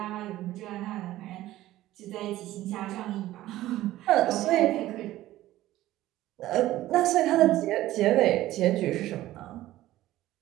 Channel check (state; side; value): quieter; left; 15.3 dB